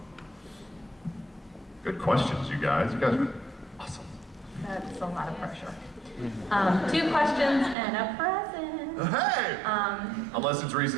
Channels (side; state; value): left; drops out; at 7.8 s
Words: Good questions, you guys. You guys are awesome. That's a lot of pressure. Two questions and a present. Hey! Unless it's